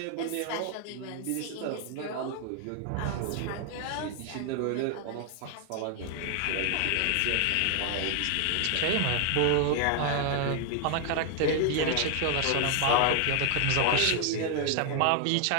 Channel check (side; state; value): both; different; correlation 0.00